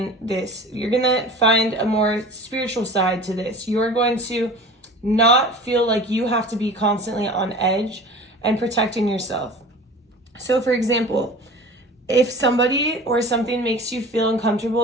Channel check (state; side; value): normal; both; correlation 0.39